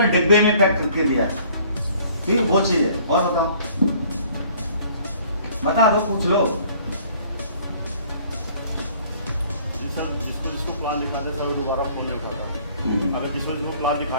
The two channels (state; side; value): inverted; both; correlation -0.56